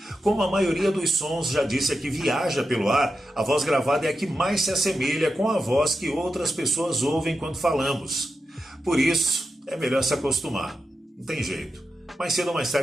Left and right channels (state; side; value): normal; both; correlation 0.89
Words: Como a maioria dos sons já disse aqui viaja pelo ar, a voz gravada é a que mais se assemelha com a voz que outras pessoas ouvem quando falamos. Por isso, é melhor se acostumar. Não tem jeito. Mais cedo ou mais